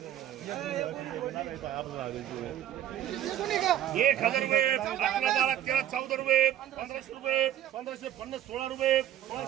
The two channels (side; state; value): left; quieter; 11.5 dB